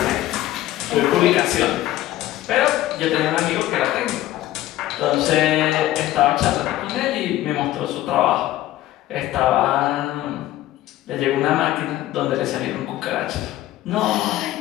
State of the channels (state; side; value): quieter; right; 14.8 dB